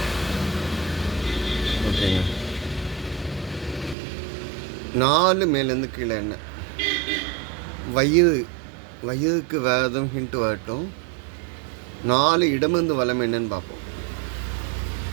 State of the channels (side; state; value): left; drops out; at 4.0 s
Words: ஓகேங்க. 4 மேலேருந்து கீழே என்ன வயிறு. வயிறுக்கு வேறு எதுவும் ஹிண்ட் வரட்டும். 4 இடமிருந்து வலம் என்னன்னு பார்ப்போம்.